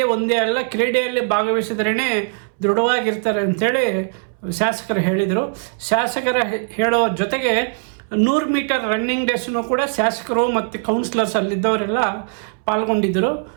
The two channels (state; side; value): silent; left; 66 dB below the other